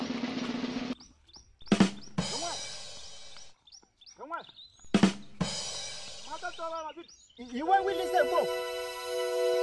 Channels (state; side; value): identical; both; correlation 1.00